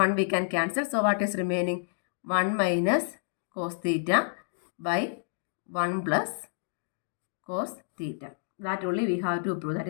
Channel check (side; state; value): right; silent; digital silence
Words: we can cancel. So what is remaining? 1 minus cos theta by 1 plus cos theta. That only we have to prove, that